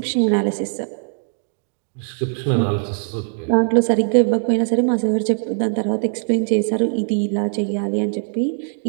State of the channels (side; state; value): left; silent; digital silence